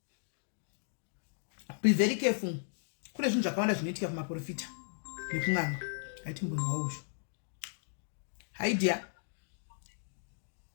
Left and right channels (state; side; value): silent; right; digital silence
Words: Be very careful. Kune zvinhu zvakawanda zvinoitika kumaprofita. Nekumwana. Ati mbunhu wauzvo. Hi dear.